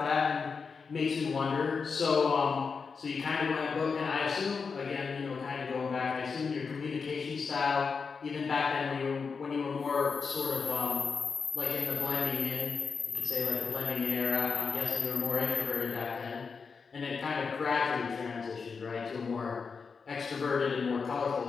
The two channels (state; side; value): quieter; right; 5.3 dB